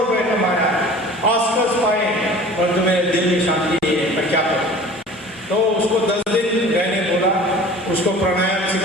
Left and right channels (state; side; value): normal; both; correlation 0.43